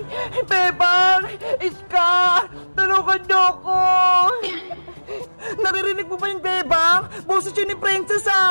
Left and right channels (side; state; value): both; inverted; correlation -1.00